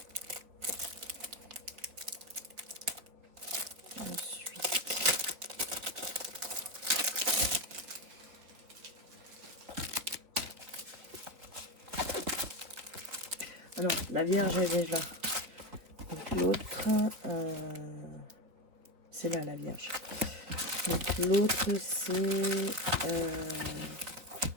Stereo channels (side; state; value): left; late; 4.2 ms